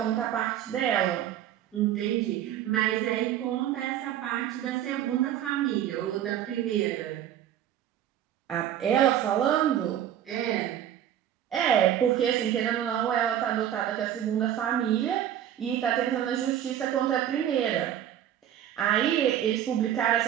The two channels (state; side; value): quieter; left; 10.8 dB